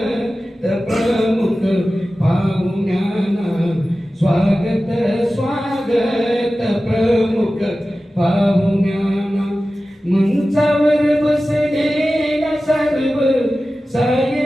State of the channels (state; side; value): normal; both; correlation 0.95